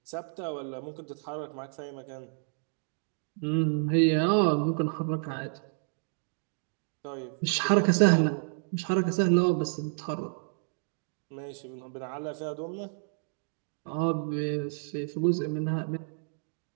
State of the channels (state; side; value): silent; left; digital silence